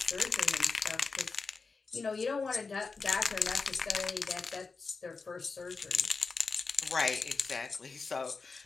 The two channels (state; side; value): quieter; right; 4.4 dB